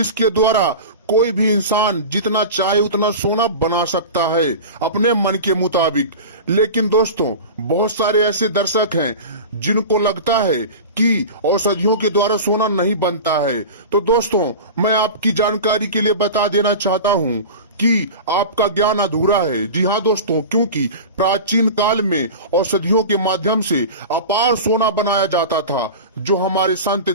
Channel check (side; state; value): both; inverted; correlation -0.31